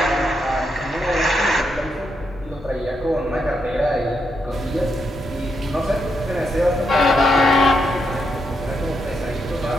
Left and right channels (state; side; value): normal; both; correlation 0.81